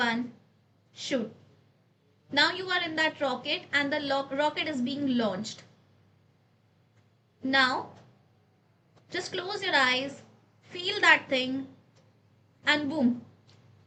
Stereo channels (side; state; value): both; identical; correlation 1.00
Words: shoot. Now you are in that rocket and the rocket is being launched. Now just close your eyes, feel that thing, and boom,